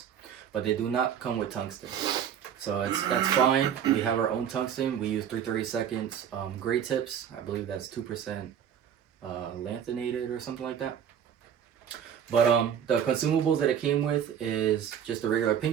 But they do not come with tungsten. So that's fine. We have our own tungsten. We use 3/32 gray tips. I believe that's 2% lanthanated or something like that. But the consumables that it came with is just the regular pin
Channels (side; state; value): left; quieter; 8.8 dB